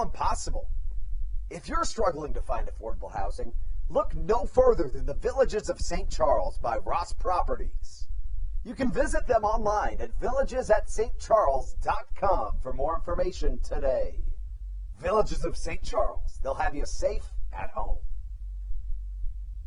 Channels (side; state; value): both; identical; correlation 1.00